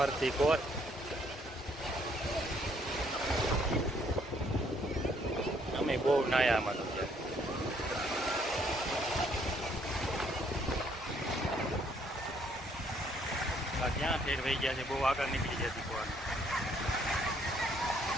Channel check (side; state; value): both; normal; correlation 0.67